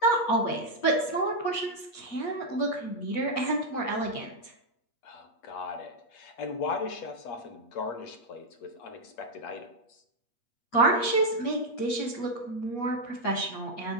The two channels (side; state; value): right; late; 8.4 ms